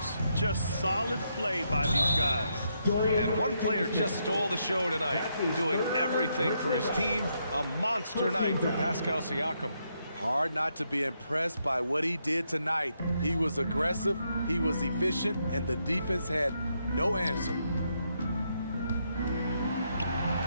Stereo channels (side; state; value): both; inverted; correlation -0.79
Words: Just solid play by these guys. And one player just stole the show tonight, doing everything for his team. A monster night for Pascal Siakam. Hard not to be impressed by what he did tonight. He was aggressive, he was efficient, and the defense had no answer.